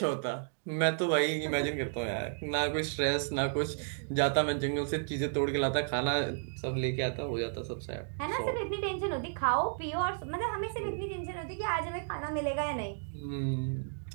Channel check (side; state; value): left; silent; digital silence